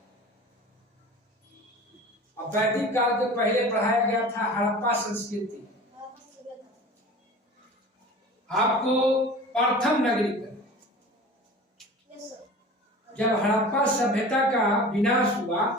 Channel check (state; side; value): normal; both; correlation 0.39